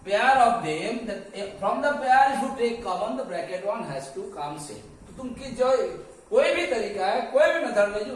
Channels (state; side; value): identical; both; correlation 1.00